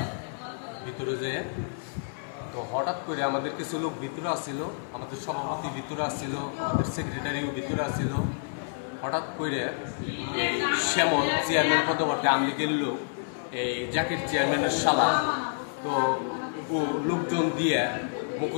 ভিতরে যেয়ে। তো হঠাৎ করে আমাদের কিছু লোক ভিতরে আসছিল, আমাদের সভাপতি ভিতরে আসছিল, আমাদের সেক্রেটারিও ভিতরে আসছিল। হঠাৎ করে এই শ্যামল চেয়ারম্যান পদবর্তী আমলিগের লোক, এই জাকির চেয়ারম্যানের শালা, তো ও লোকজন দিয়ে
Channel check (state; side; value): silent; right; 59 dB below the other